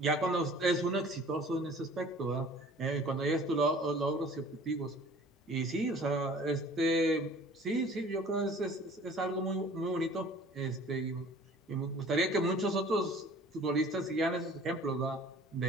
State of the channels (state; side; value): normal; both; correlation 0.48